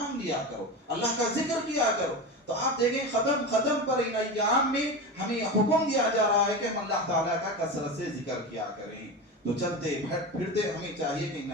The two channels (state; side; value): normal; both; correlation 0.23